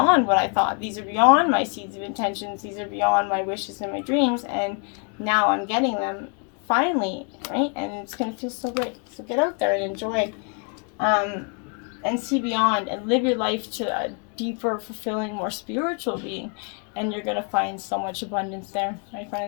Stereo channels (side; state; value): right; quieter; 38.3 dB